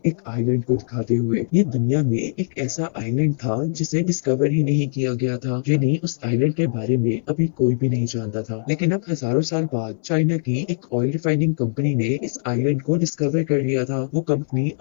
एक आइलैंड को दिखाते हुए। ये दुनिया में एक ऐसा आइलैंड था जिसे डिस्कवर ही नहीं किया गया था, यानी उस आइलैंड के बारे में अभी कोई भी नहीं जानता था। लेकिन अब हजारों साल बाद चाइना की एक ऑयल रिफाइनिंग कंपनी ने इस आइलैंड को डिस्कवर कर लिया था। वो कंपनी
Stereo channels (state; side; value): silent; right; 62 dB below the other